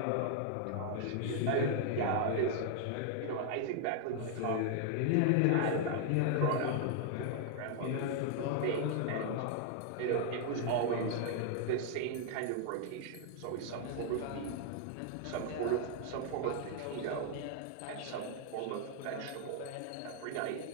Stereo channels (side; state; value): both; different; correlation 0.00